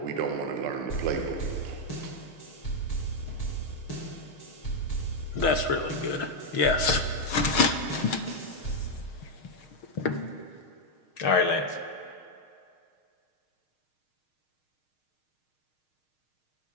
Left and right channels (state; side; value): late; right; 6.4 ms